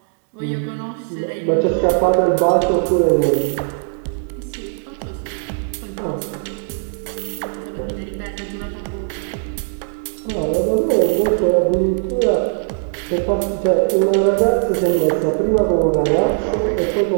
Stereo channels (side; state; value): left; silent; digital silence